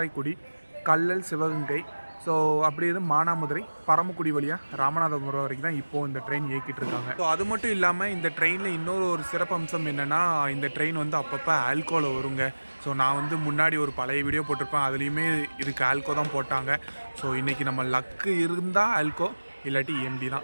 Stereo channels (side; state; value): both; inverted; correlation -1.00